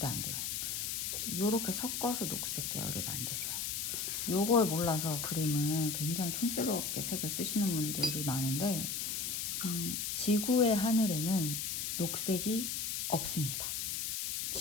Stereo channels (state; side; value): noise; left; hiss, 2 dB below the sound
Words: 안 돼요. 요렇게 섞어서 녹색 계열을 만드세요. 요걸 몰라서 그림을 굉장히 촌스럽게 색을 쓰시는 분들이 많은데 지구의 하늘에는 녹색이 없습니다.